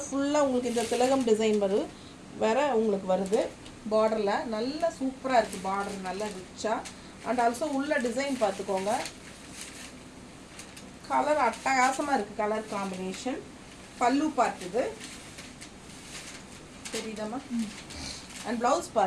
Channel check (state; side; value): identical; both; correlation 1.00